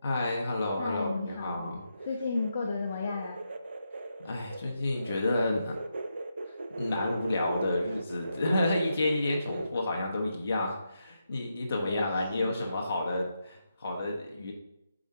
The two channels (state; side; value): inverted; both; correlation -0.84